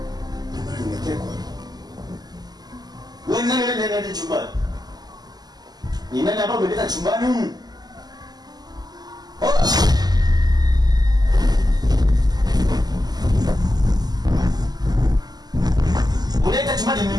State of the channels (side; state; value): left; late; 0.20 ms